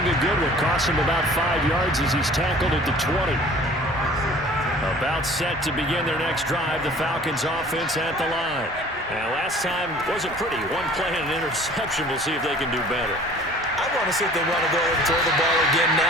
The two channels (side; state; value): both; normal; correlation 0.49